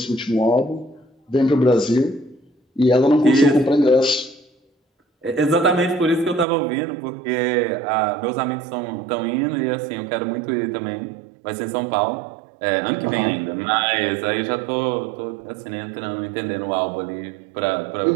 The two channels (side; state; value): left; drops out; at 6.5 s